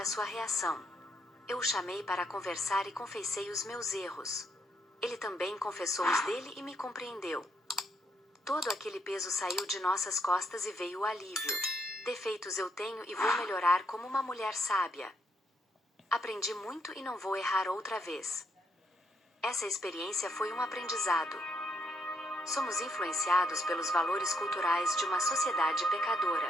a sua reação. Eu o chamei para conversar e confessei os meus erros. Ele também confessou os dele e me compreendeu. Todo aquele peso saiu de nossas costas e veio o alívio. Defeitos eu tenho e vou melhorar como uma mulher sábia. Aprendi muito e não vou errar outra vez. Essa experiência foi um aprendizado. Somos influenciados pelos valores culturais de uma sociedade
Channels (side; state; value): both; normal; correlation 0.75